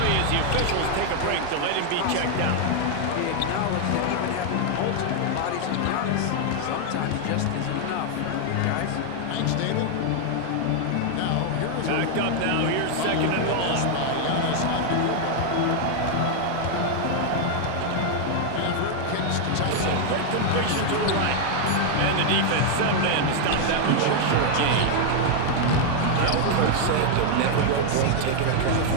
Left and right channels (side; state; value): both; different; correlation 0.00